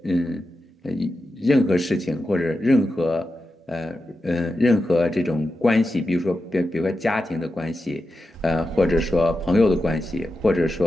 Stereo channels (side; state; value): both; normal; correlation 0.90